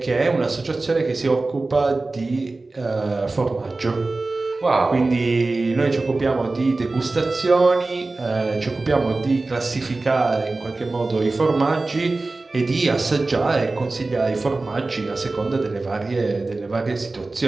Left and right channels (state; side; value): quieter; left; 3.3 dB